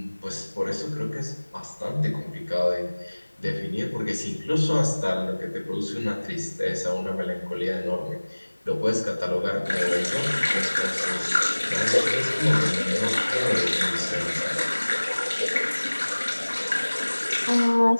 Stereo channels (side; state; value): both; inverted; correlation -1.00